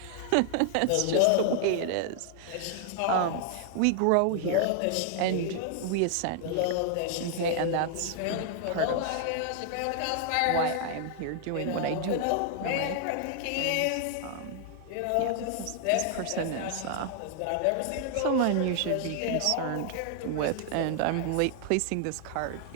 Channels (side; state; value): both; different; correlation 0.00